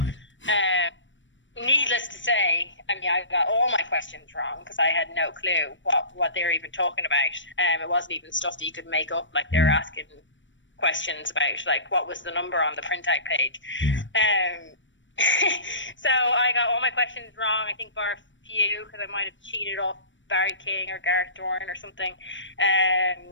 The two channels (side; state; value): right; late; 0.55 ms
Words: Needless to say, I mean, I got all my questions wrong because I had no clue what they were even talking about. It wasn't even stuff that you could make up. Like, they were asking questions about, like, what was the number on the printout page. Yeah. So I got all my questions wrong, I think bar a few, because I might have cheated off Barry King or Gareth Dorn or something.